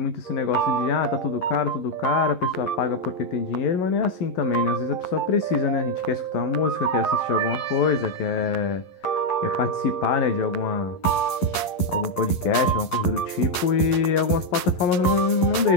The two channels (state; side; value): late; right; 11 ms